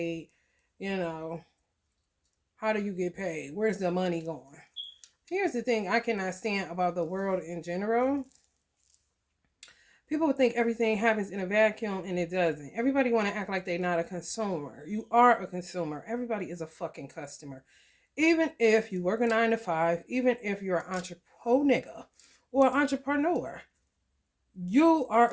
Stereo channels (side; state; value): both; identical; correlation 1.00